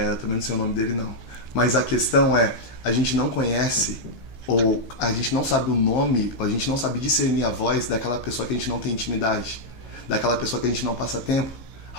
também não sei o nome dele, não. Mas a questão é, a gente não conhece, ou a gente não sabe o nome, ou a gente não sabe discernir a voz daquela pessoa que a gente não tem intimidade, daquela pessoa que a gente não passa tempo.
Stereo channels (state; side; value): late; right; 15 ms